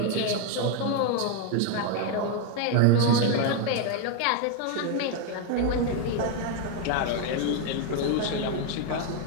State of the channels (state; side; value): different; both; correlation 0.01